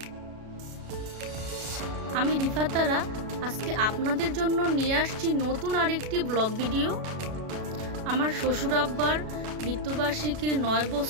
আমি রিফাতারা আজকে আপনাদের জন্য নিয়ে আসছি নতুন আরেকটি ব্লগ ভিডিও। আমার শ্বশুর আব্বার মৃত্যুবার্ষিকীর 9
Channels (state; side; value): late; left; 37 ms